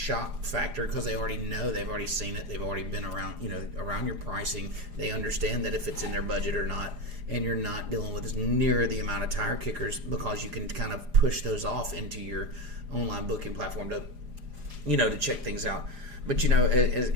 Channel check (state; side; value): late; left; 4.9 ms